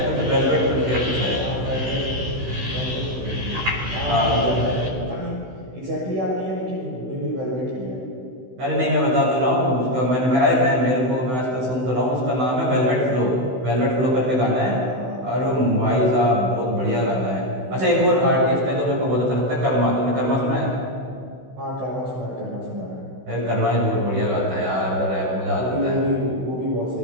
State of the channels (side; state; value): left; late; 16 ms